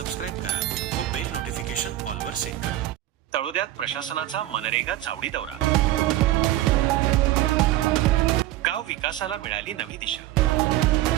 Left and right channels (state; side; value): quieter; left; 14.7 dB